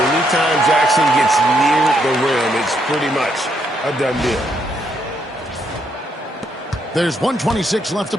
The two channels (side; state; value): both; normal; correlation 0.75